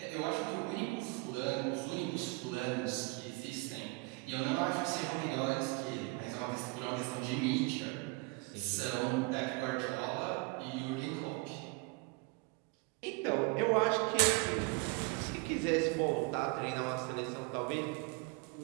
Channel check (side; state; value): left; quieter; 26.2 dB